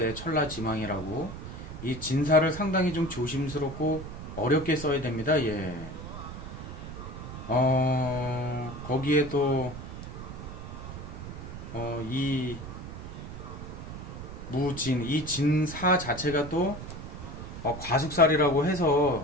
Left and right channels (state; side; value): noise; right; rumble, 10 dB below the sound